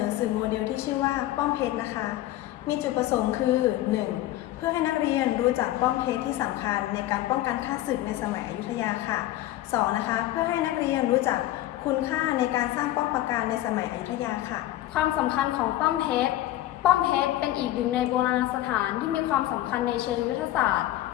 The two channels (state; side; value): quieter; right; 14.7 dB